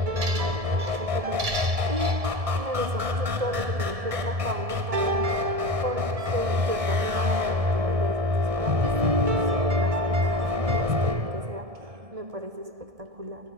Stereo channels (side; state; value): left; late; 1.7 ms